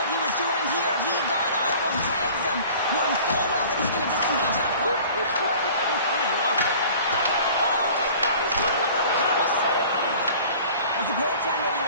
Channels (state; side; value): inverted; both; correlation -0.45